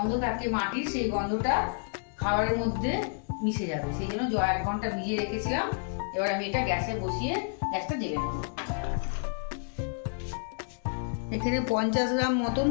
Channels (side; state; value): right; silent; 58 dB below the other